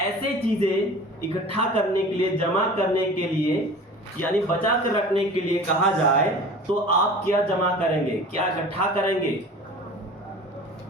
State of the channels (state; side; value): normal; both; correlation 0.40